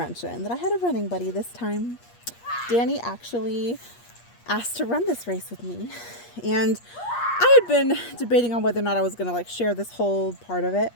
that I had a running buddy this time. Danny actually asked to run this race with me. And I had been debating on whether or not I was going to share this whole part of it.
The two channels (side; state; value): right; late; 8.4 ms